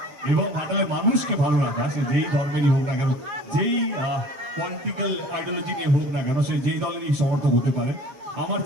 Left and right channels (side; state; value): left; late; 7.7 ms